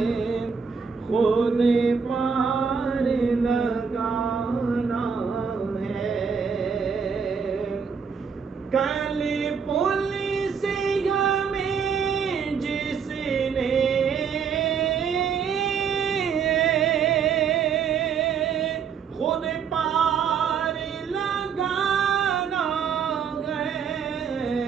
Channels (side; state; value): left; quieter; 6.4 dB